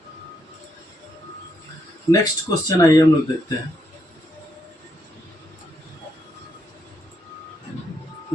नेक्स्ट क्वेश्चन आइए हम लोग देखते हैं।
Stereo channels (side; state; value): both; normal; correlation 0.77